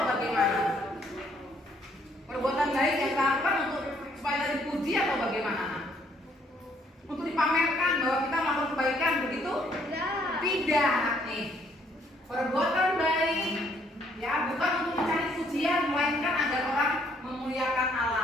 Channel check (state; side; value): normal; both; correlation 0.66